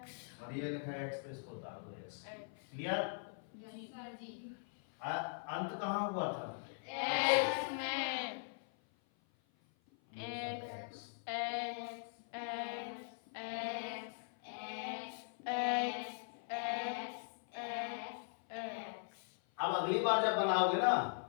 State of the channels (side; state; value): right; silent; 51 dB below the other